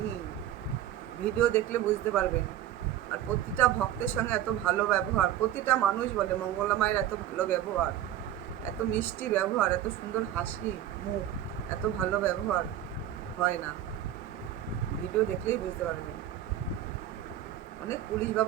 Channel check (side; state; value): left; quieter; 11.8 dB